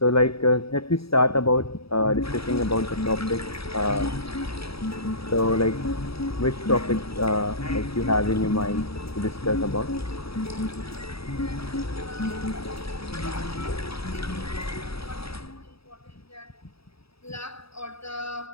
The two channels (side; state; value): right; late; 0.77 ms